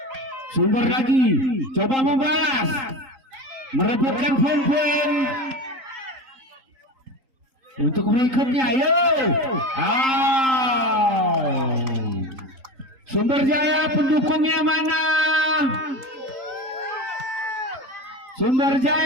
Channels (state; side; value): late; left; 3.8 ms